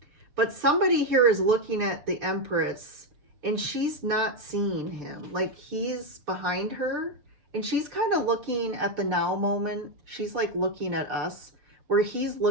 But somebody here is looking at the Empress and she's not seeing him. Like, he's behind her and she's kind of looking at the now moment. She's like looking at us where he's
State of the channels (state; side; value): late; left; 6.9 ms